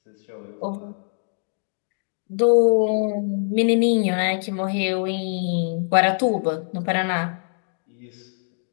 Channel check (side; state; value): right; silent; digital silence